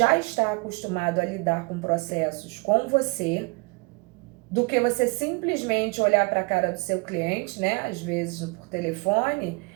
está acostumado a lidar com processos com você, do que você simplesmente olhar para a cara do seu cliente, né, às vezes por telefone,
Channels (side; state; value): left; quieter; 29.5 dB